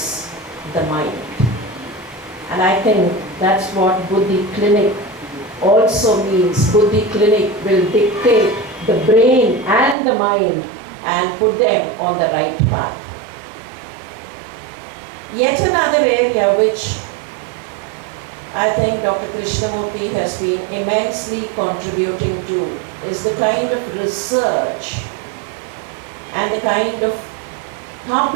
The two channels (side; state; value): left; drops out; at 10.0 s